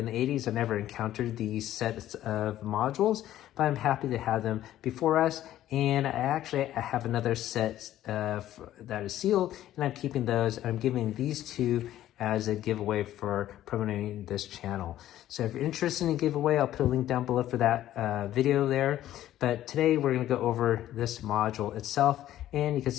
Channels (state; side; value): quieter; right; 13.0 dB